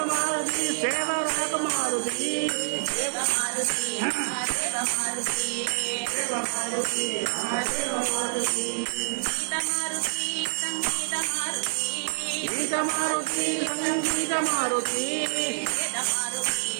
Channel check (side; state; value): left; silent; 60 dB below the other